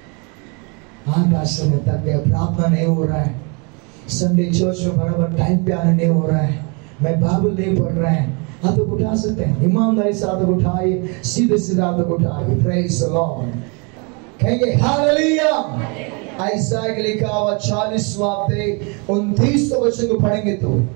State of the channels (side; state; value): left; quieter; 32.9 dB